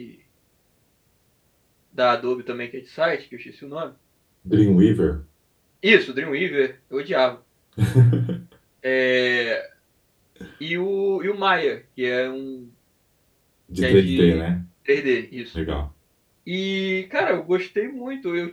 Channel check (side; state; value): both; identical; correlation 1.00